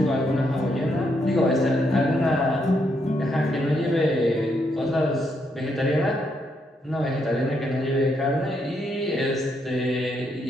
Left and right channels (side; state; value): both; normal; correlation 0.77